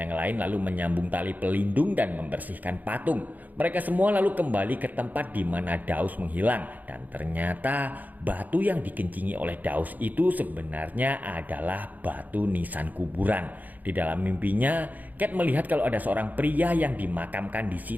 lain lalu menyambung tali pelindung dan membersihkan patung. Mereka semua lalu kembali ke tempat di mana Daus menghilang. Dan ternyata batu yang dikencingi oleh Daus itu sebenarnya adalah batu nisan kuburan. Di dalam mimpinya, Kate melihat kalau ada seorang pria yang dimakamkan di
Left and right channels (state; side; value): late; left; 0.081 ms